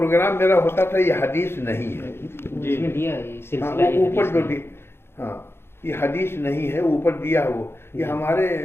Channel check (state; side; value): late; right; 0.12 ms